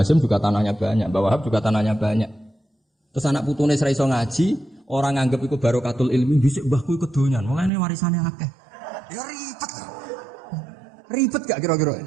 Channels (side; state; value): left; drops out; at 7.7 s